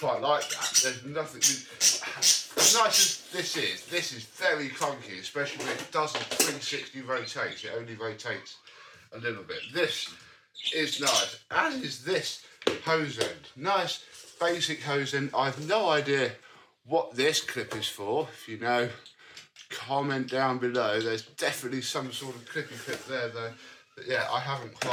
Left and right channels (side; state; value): both; identical; correlation 1.00